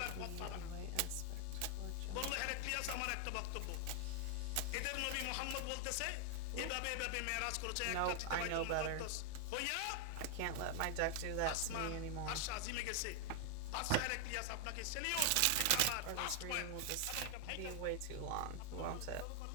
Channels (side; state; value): both; different; correlation 0.00